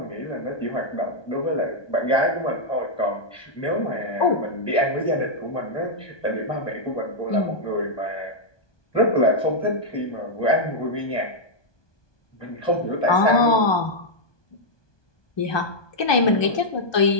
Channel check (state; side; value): late; right; 1.2 ms